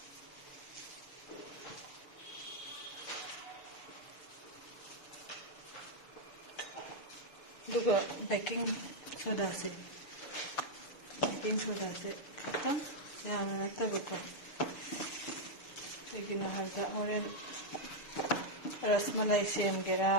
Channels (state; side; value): late; right; 6.7 ms